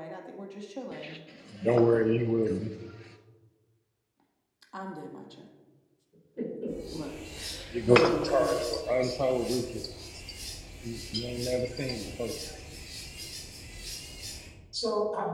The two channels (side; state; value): both; identical; correlation 1.00